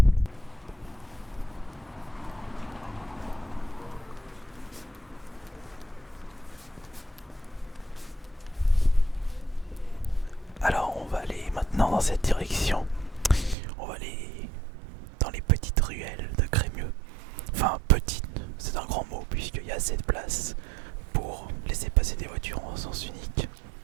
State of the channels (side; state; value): left; drops out; at 13.6 s